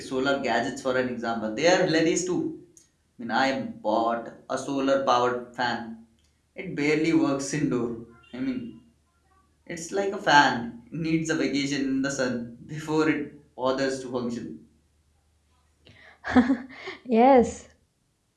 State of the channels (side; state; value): both; identical; correlation 1.00